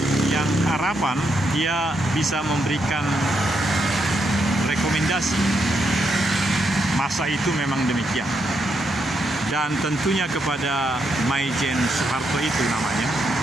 yang harapan dia bisa memberikan rekomendasi masa itu memang demikian. Dan tentunya kepada Maijen Soeharto itu namanya,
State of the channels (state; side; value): normal; both; correlation 0.80